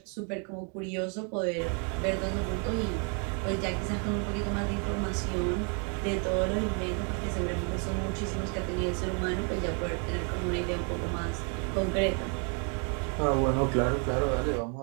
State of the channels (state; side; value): quieter; left; 39.2 dB